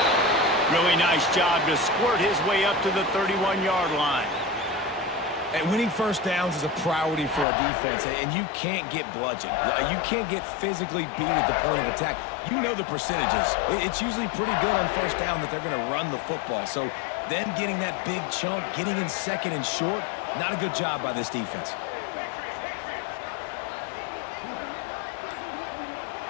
Really nice job to squirt his way up to the 31-yard line. And winning first downs is a priority for a defense, and you can't get bludgeoned. You can't get physically beat at the point of attack. You know the percentages. It's usually pretty good on first down that they're going to run the football. So them getting that big chunk, getting in second and short, not a good job by this defense.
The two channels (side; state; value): right; drops out; at 7.5 s